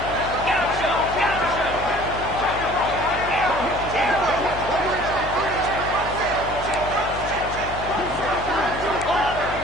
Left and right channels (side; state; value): left; noise; hum, 11 dB below the sound